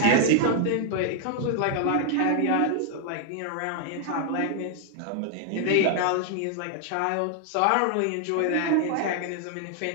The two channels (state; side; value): different; both; correlation 0.00